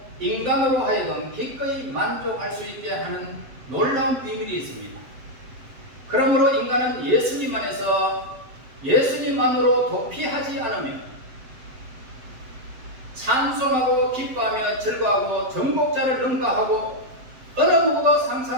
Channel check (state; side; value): late; left; 7.7 ms